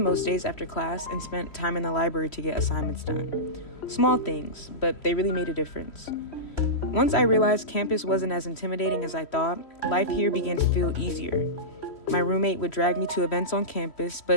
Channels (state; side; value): late; right; 3.1 ms